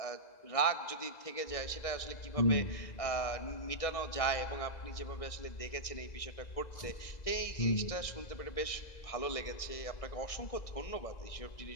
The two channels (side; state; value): right; late; 1.6 ms